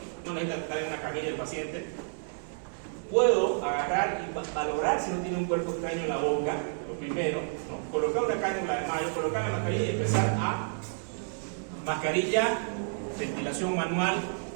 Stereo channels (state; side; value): silent; left; 56 dB below the other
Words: no necesita estar en una camilla el paciente, puedo agarrar y valorar si no tiene un cuerpo extraño en la boca, lo primero, ¿no?, colocar una cánula de mayo, colocar la mascarilla y empezar a mascarilla, ventilación manual